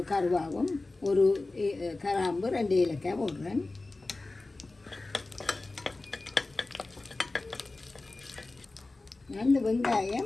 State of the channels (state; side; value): quieter; right; 3.2 dB